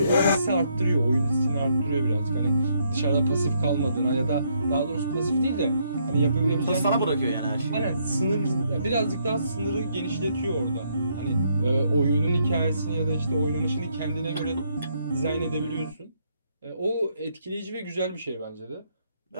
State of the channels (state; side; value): inverted; both; correlation -0.73